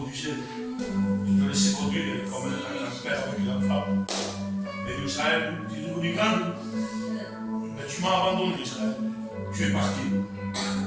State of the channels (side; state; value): both; identical; correlation 1.00